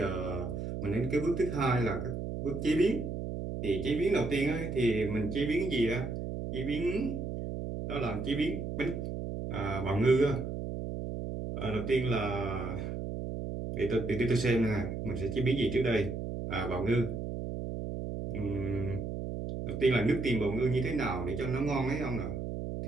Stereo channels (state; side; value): noise; right; hum, 5 dB below the sound